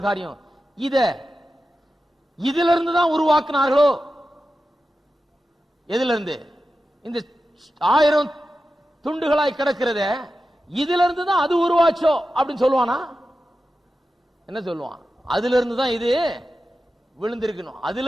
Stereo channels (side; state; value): both; normal; correlation 0.92